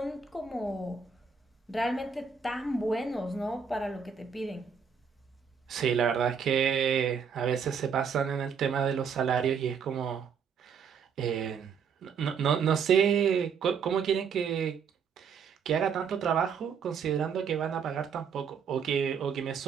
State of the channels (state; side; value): quieter; left; 6.4 dB